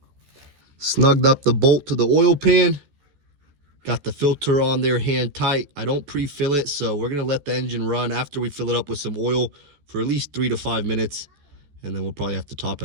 Snugged up the bolt to the oil pan. Got the filter on there hand tight. I don't pre-fill it, so we're gonna let the engine run after we fill it up with some oil for at least 3 to 5 minutes, and then we'll probably have to top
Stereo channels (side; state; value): left; late; 14 ms